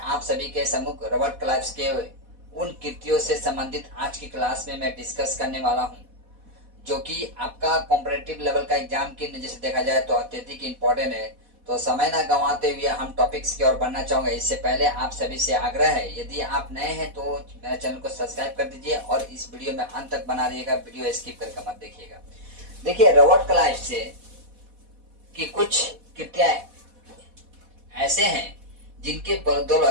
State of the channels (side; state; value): left; late; 4.1 ms